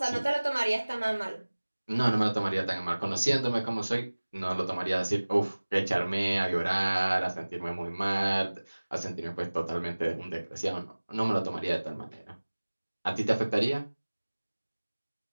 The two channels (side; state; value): both; inverted; correlation -1.00